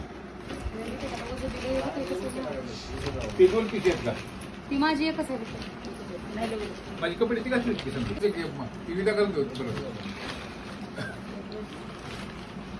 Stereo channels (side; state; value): both; identical; correlation 1.00